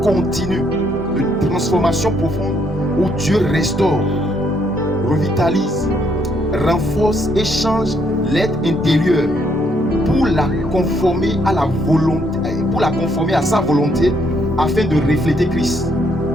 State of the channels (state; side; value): normal; both; correlation 0.71